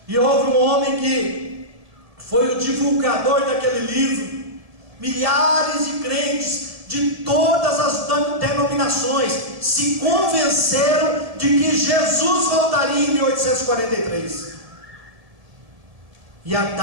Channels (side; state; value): left; late; 1.7 ms